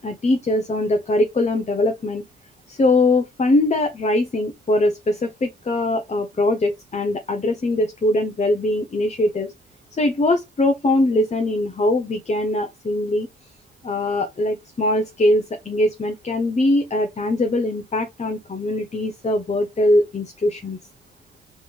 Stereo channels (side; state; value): both; normal; correlation 0.65